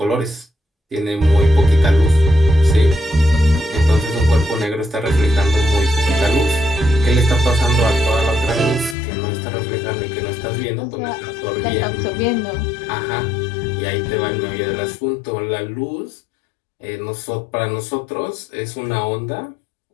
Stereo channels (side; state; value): right; drops out; at 9.0 s